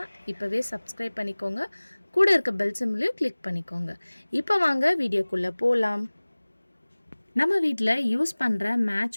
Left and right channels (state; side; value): inverted; both; correlation -1.00